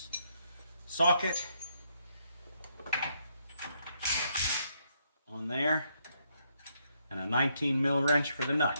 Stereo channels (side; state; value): both; inverted; correlation -0.75